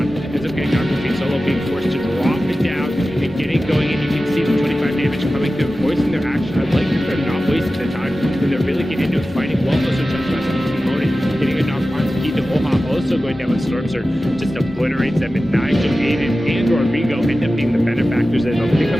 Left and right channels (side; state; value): both; normal; correlation 0.95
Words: ends up getting knocked between Solo being forced to drop it down and getting going, and you can see the 25 damage coming through, voicing their action. I like that they're not wasting their time when they're really getting into it, fighting well. Also, getting a knock on Keith Oha, also going down with Storm Surge, just obliterates them, and Nigel, Aiden, and Rodrigo end up being the benefactors, and they'll pick